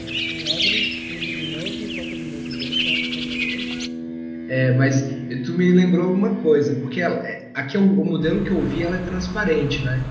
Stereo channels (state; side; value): identical; both; correlation 1.00